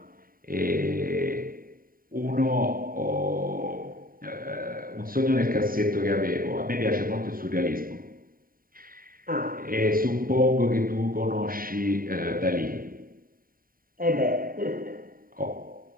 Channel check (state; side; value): late; left; 0.41 ms